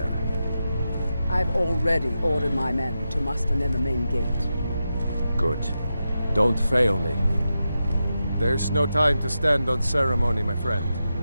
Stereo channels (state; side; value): inverted; both; correlation -0.89